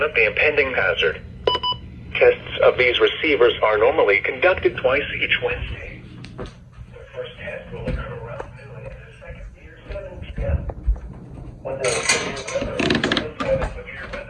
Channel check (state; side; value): identical; both; correlation 1.00